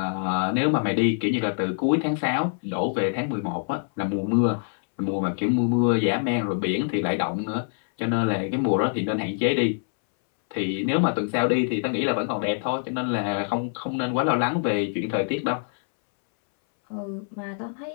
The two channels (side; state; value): right; silent; 62 dB below the other